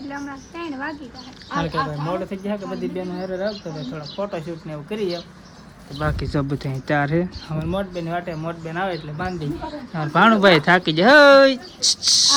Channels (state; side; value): identical; both; correlation 1.00